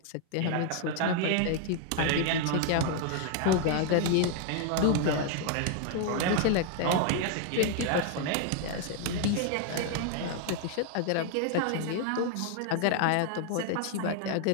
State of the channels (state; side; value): different; both; correlation 0.00